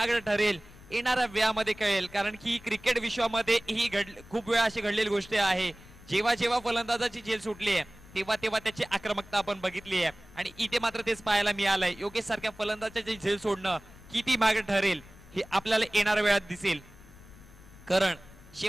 ठरेल येणाऱ्या वेळामध्ये कळेल. कारण की क्रिकेट विश्वामध्ये ही खूप वेळा अशी घडलेली गोष्ट आहे. जेव्हा फलंदाजाची झेल सुटली आहे तेव्हा त्याची आक्रमकता आपण बघितली आहे आणि इथे मात्र तेच पाहायला मिळालंय. योगेश सारख्या फलंदाजाची झेल सोडणं किती महागडं ठरेल हे आपल्याला येणाऱ्या वेळात दिसेल. कारण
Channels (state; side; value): noise; left; rumble, 21 dB below the sound